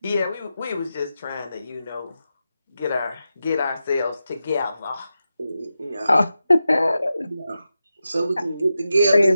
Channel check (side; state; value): both; inverted; correlation -0.90